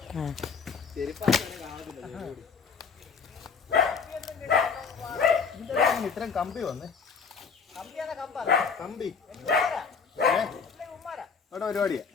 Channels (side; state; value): right; quieter; 5.6 dB